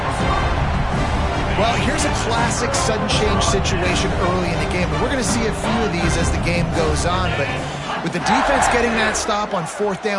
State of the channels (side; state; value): both; identical; correlation 1.00